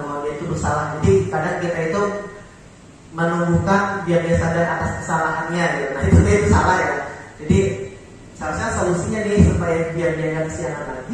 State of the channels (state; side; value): identical; both; correlation 1.00